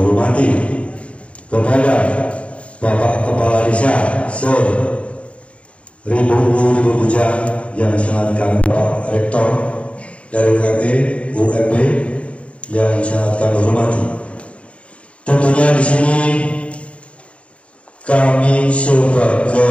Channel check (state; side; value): late; right; 0.062 ms